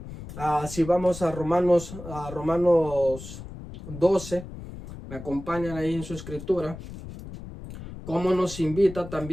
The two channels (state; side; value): noise; left; rumble, 12 dB below the sound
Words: Si vamos a Romanos 12, me acompañan ahí en su escritura, cómo nos invita